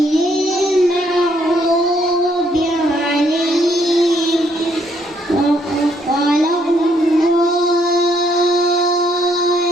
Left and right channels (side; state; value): both; normal; correlation 0.69